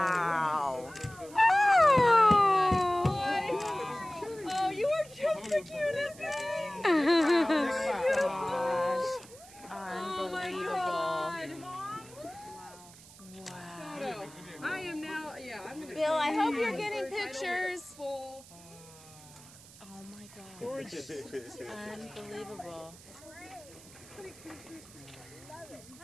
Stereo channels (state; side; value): noise; right; hiss, 20 dB below the sound